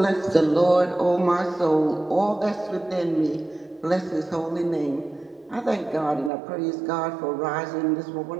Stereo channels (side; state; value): left; drops out; at 6.3 s